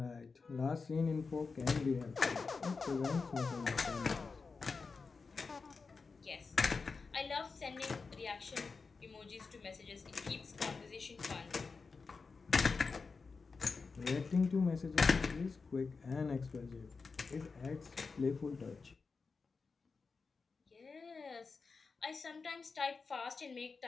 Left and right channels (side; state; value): right; quieter; 4.6 dB